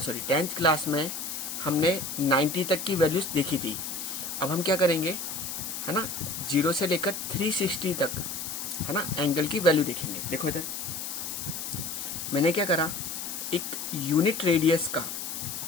क्लास में हमने 90 तक की वैल्यूज देखी थी। अब हम क्या करेंगे, है ना, 0 से लेकर 360 तक, है ना, एंगल की वैल्यू देखेंगे। देखो इधर मैंने क्या करा, एक यूनिट रेडियस का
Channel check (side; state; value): left; noise; hiss, 5 dB below the sound